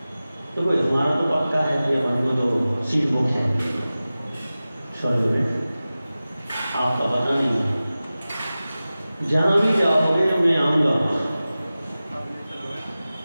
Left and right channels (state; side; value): inverted; both; correlation -0.96